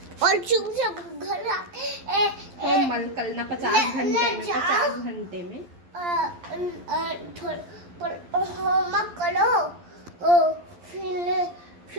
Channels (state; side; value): late; left; 11 ms